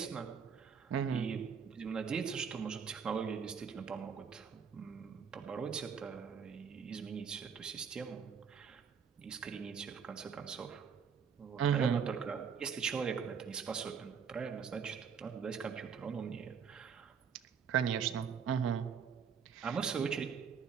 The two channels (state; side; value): quieter; left; 6.7 dB